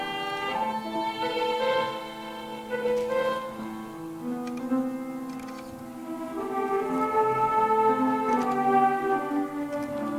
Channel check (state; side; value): identical; both; correlation 1.00